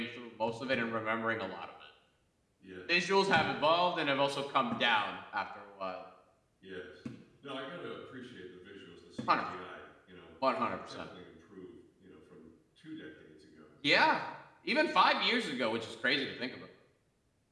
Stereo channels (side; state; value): both; identical; correlation 1.00